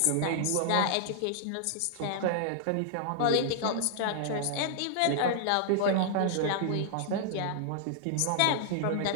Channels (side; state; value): both; different; correlation -0.01